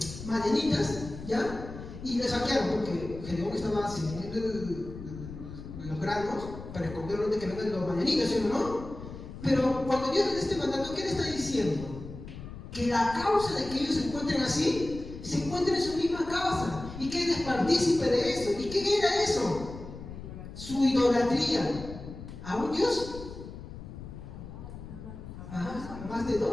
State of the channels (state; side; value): noise; left; rumble, 12 dB below the sound